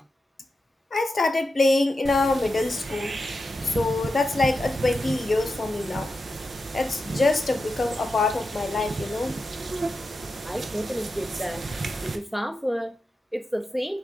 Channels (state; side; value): normal; both; correlation 0.89